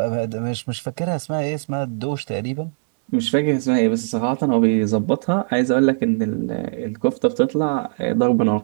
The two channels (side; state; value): left; silent; digital silence